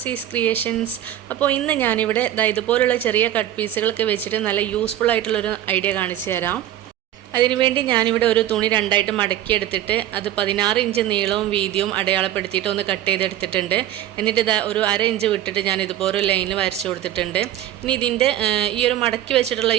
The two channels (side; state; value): left; quieter; 12.5 dB